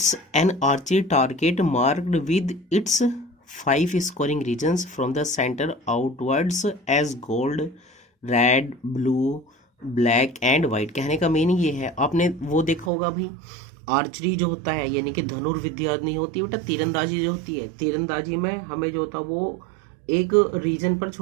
an archery target marked with its 5 scoring regions from the center outwards as gold, red, blue, black and white. कहने का मीनिंग ये है, आपने वो देखा होगा भाई आर्चरी जो होता है यानी कि धनुर्विद्या नहीं होती बेटा, तीरंदाजी जो होती है, तीरंदाजी में हमें जो होता है वो एक रीजन पर,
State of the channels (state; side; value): drops out; left; at 12.9 s